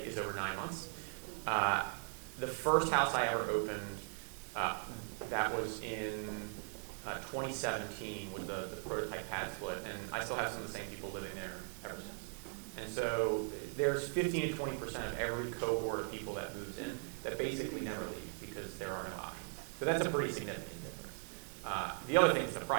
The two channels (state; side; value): silent; left; 52 dB below the other